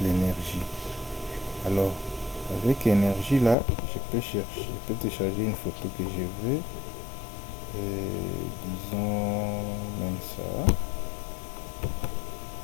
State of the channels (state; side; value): drops out; right; at 3.6 s